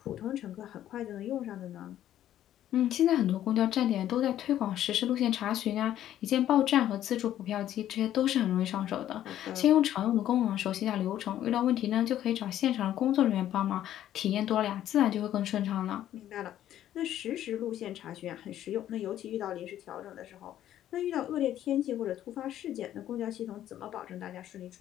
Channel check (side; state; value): right; quieter; 11.9 dB